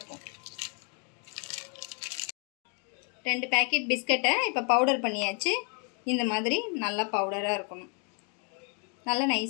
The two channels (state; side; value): quieter; right; 38.5 dB